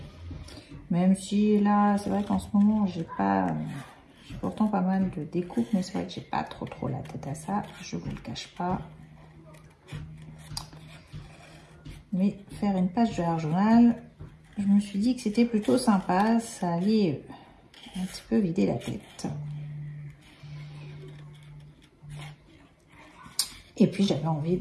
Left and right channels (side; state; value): both; identical; correlation 1.00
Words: Même si là, c'est vrai qu'en ce moment, j'ai pourtant pas mal de découpes, mais c'est vrai que j'ai pas trop la tête à ça, je vous le cache pas. Mais faire une page de art journal, je me suis dit que c'était plutôt sympa, ça allait un petit peu vider la tête. Et puis j'avais envie